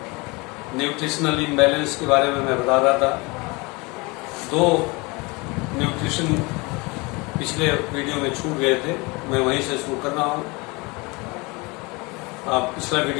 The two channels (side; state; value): right; quieter; 26.3 dB